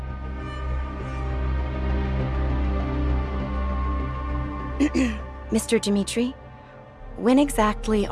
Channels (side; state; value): both; identical; correlation 1.00